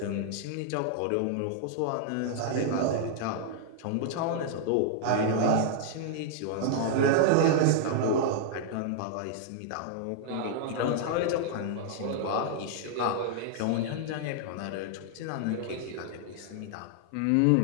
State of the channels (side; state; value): both; different; correlation 0.00